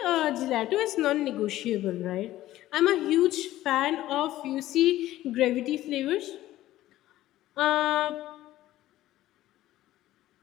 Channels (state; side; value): quieter; right; 14.8 dB